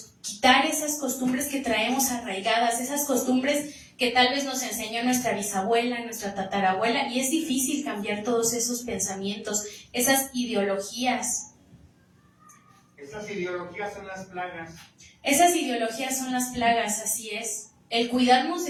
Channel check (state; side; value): identical; both; correlation 1.00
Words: quitar esas costumbres que traemos arraigadas, esas costumbres que tal vez nos enseñó nuestra bisabuela, nuestra tatarabuela, y es difícil cambiar todos esos pensamientos, esas ideologías. Esas ideologías son las plagas. Esas ideologías son las plagas, así es. El cuidarnos